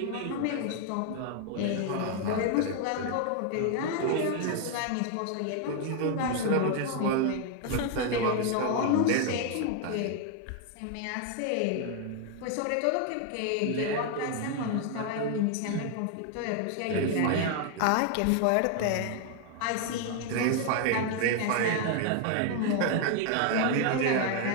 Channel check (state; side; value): different; both; correlation 0.00